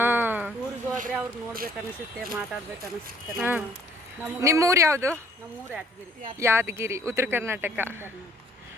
ನಿಮ್ಮೂರು ಯಾವುದು? ಯಾದಗಿರಿ, ಉತ್ತರ ಕರ್ನಾಟಕ.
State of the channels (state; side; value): normal; both; correlation 0.59